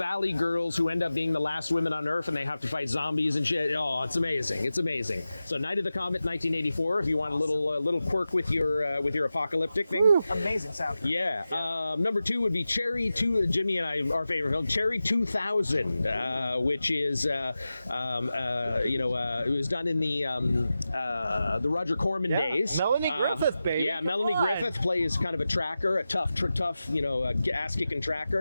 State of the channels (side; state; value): both; inverted; correlation -0.94